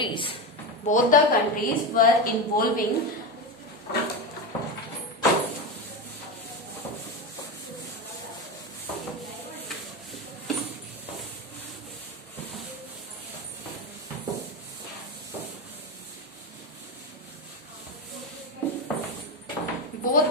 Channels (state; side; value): normal; both; correlation 0.17